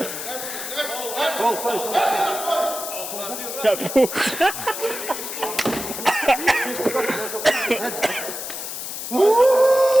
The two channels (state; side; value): noise; left; hiss, 7 dB below the sound